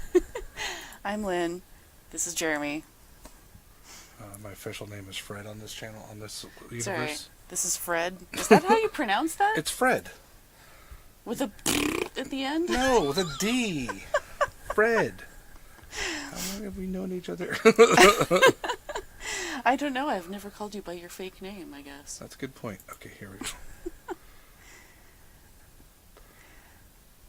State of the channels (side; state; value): both; identical; correlation 1.00